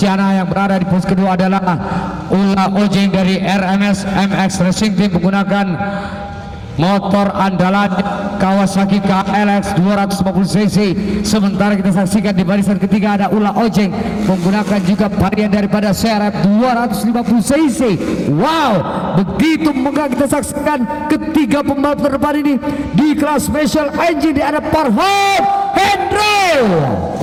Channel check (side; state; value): both; identical; correlation 1.00